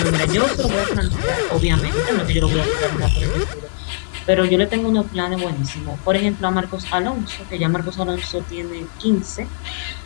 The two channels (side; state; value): right; silent; 63 dB below the other